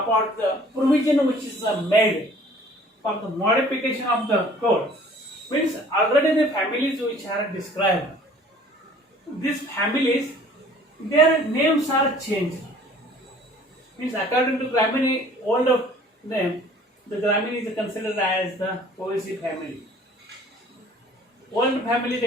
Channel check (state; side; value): normal; both; correlation 0.52